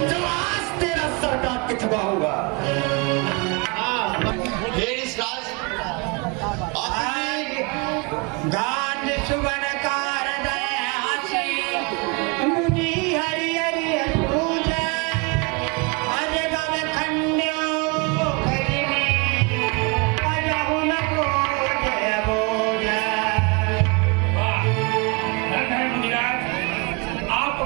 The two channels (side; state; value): left; quieter; 30.2 dB